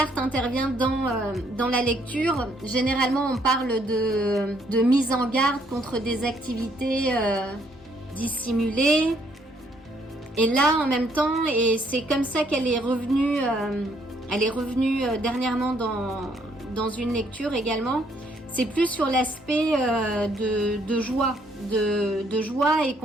intervient dans la lecture. Généralement, on parle de mise en garde contre des activités dissimulées. Et là, en même temps, et c'est comme ça qu'elle est revenue, dernièrement dans une lecture également. C'est plus sur l'aspect de joie, de joie et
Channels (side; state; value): both; normal; correlation 0.68